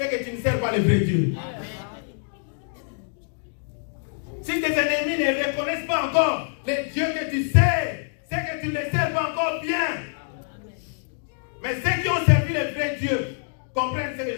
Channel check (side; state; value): right; silent; digital silence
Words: que tu ne sers pas le vrai Dieu. Si tes ennemis ne reconnaissent pas encore le Dieu que tu sers, c'est que tu ne le sers pas encore bien. Mais ceux qui ont servi le vrai Dieu comprennent ce que